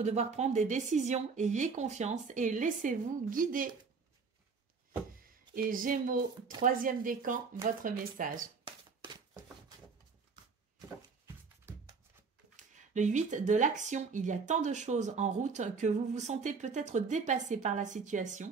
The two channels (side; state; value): left; quieter; 5.0 dB